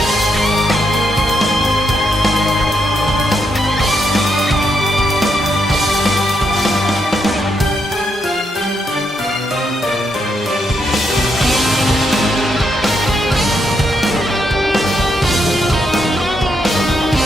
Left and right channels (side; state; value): both; normal; correlation 0.79